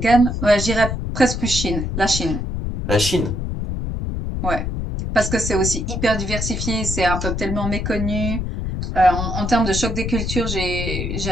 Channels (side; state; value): left; noise; rumble, 3 dB below the sound